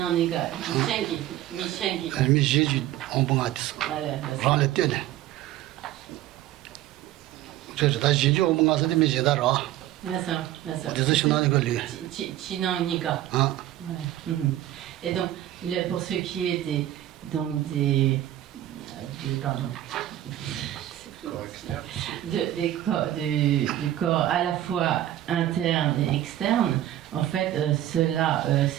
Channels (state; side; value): quieter; left; 13.4 dB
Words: Michengi. Mi Jésus en bon atis. Rang le tene. C'est ta Jésus en bon atis mi Jésus ra. D'accord. C'est Chinaniga lui. Chinaniga. Ah. Et donc, pour ce qui est des du corps à la fois interne et externe, en fait, cela